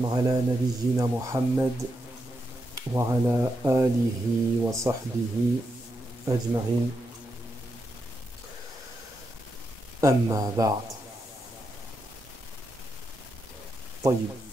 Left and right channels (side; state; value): both; normal; correlation 0.84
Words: على نبينا محمد وعلى آله وصحبه أجمعين أما بعد. طيب.